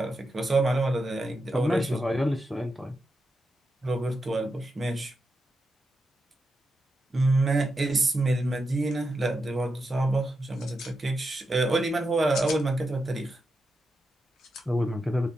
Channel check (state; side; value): normal; both; correlation 0.87